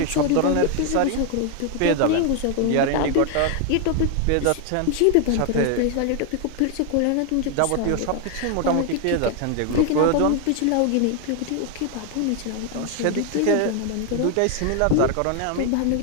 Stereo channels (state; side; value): different; both; correlation 0.00